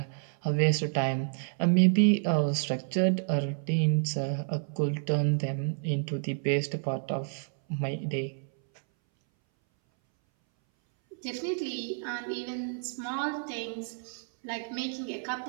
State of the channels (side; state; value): left; silent; 58 dB below the other